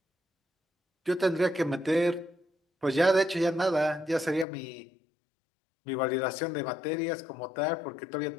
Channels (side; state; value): right; drops out; at 4.5 s